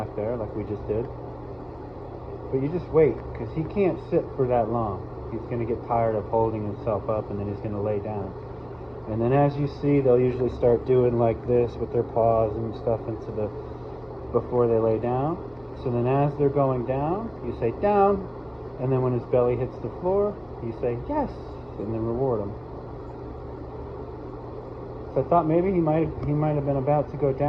there like we just did. But you just wait, because he can't sit for that long. He's going to get tired of holding himself up, and then he's going to lay down. And then as you see, they'll usually start doing like this with their paws and stuff before they lay down. So then as they're going down, you say down, and then when his belly hits the floor, you say yes, and then reward him. So I thought maybe he might have been about to go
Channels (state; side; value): identical; both; correlation 1.00